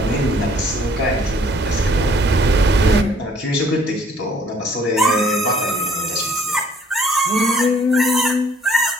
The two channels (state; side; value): normal; both; correlation 0.60